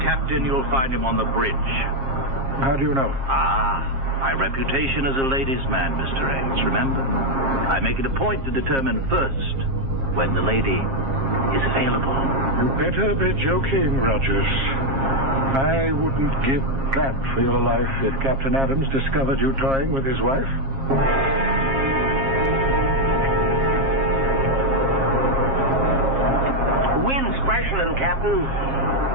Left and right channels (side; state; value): left; late; 7.4 ms